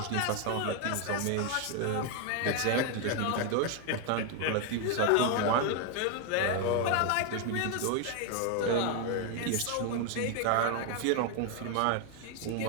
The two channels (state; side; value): different; both; correlation 0.01